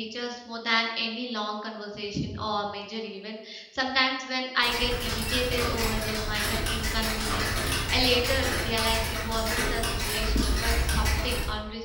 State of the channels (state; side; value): identical; both; correlation 1.00